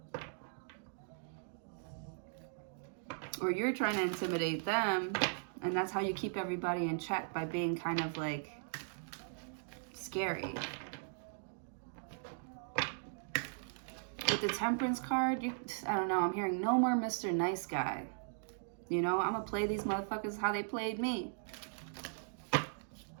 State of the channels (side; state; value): left; silent; digital silence